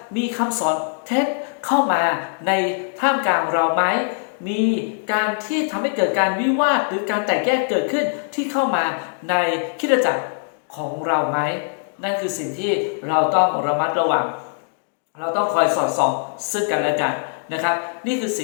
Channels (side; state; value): right; silent; 65 dB below the other